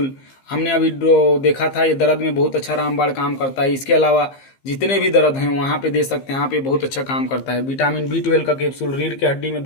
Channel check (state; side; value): late; right; 15 ms